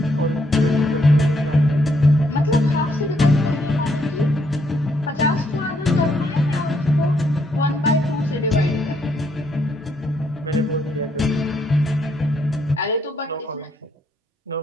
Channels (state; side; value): normal; both; correlation 0.73